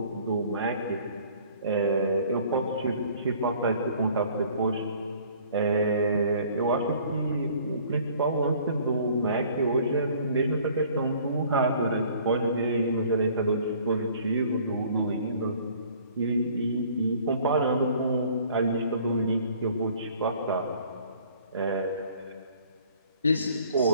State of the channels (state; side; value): inverted; both; correlation -0.55